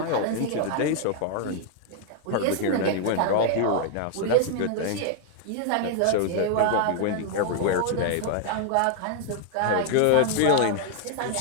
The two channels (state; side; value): different; both; correlation 0.00